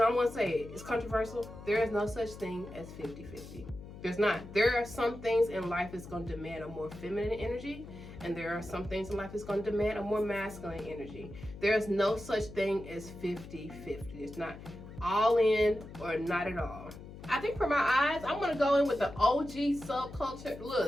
gonna say it, it's controversial, there is no such thing as 50-50. There's not. There are some things in life that's gonna demand a more feminine energy, and there are some things in life that's gonna demand a more masculine energy. There is no such thing as 50-50. It's not all in or not at all. I think for my eyes, I'm gonna go in with the OG subculture.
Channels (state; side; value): noise; left; hum, 14 dB below the sound